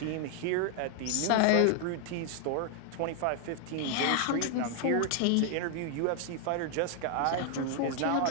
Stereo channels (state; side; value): different; both; correlation 0.00